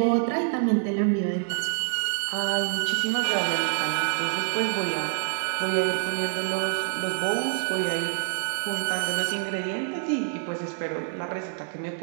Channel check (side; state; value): left; silent; digital silence